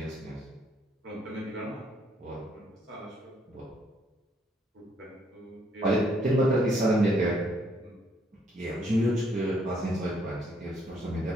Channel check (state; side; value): normal; both; correlation 0.69